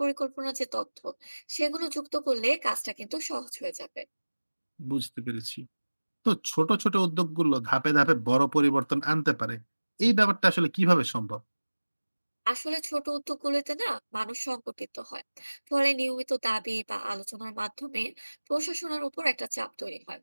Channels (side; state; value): both; inverted; correlation -1.00